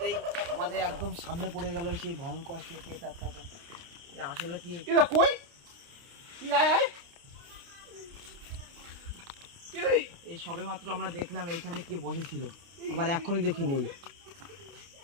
আমাদের একদম সামনে পড়ে গেল সেই ভয়ঙ্কর সে পেটারটা। আসলে কি কই এই সবে মাত্র আমরা দেখলাম এইখানে কে বসেছিল, আবার এখনই দেখি নেই।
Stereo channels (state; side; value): late; left; 29 ms